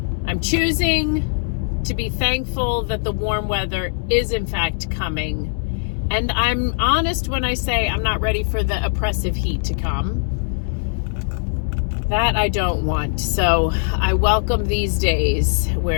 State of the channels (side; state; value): right; silent; digital silence